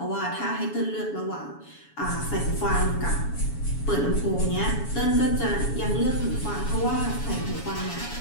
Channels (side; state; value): right; late; 7.1 ms